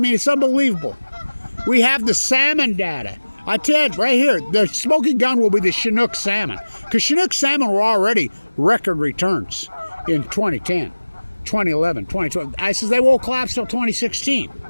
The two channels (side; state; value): both; inverted; correlation -1.00